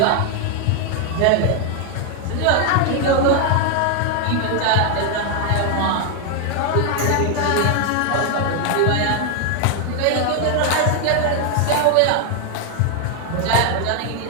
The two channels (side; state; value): both; different; correlation 0.00